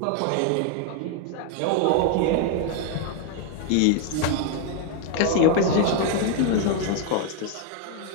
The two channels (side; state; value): both; different; correlation 0.01